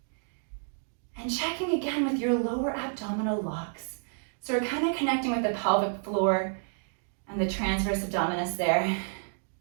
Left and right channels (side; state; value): left; silent; 58 dB below the other